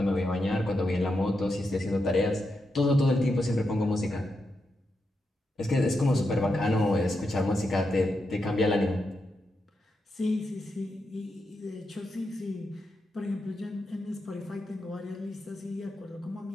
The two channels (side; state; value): both; normal; correlation 0.85